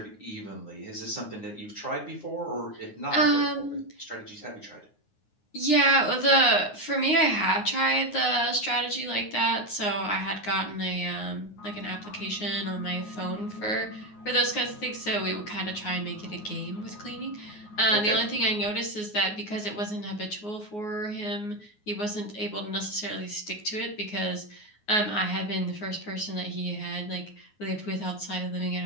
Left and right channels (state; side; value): late; right; 9.6 ms